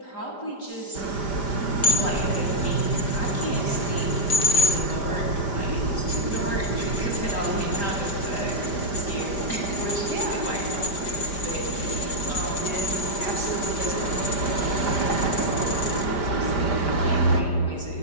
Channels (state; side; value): late; right; 5.0 ms